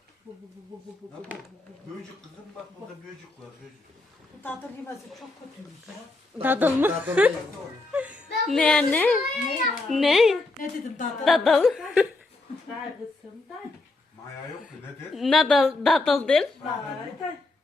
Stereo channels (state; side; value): quieter; right; 3.1 dB